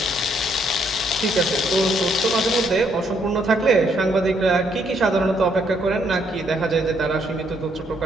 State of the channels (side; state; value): both; normal; correlation 0.71